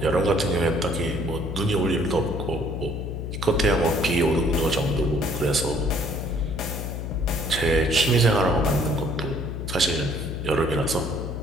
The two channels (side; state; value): left; noise; hum, 5 dB below the sound